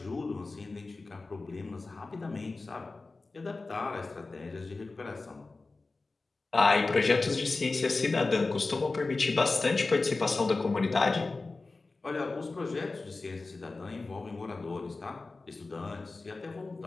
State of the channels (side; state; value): right; quieter; 3.6 dB